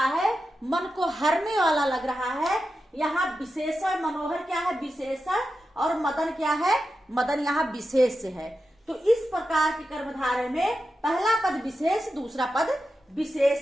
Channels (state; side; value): normal; both; correlation 0.90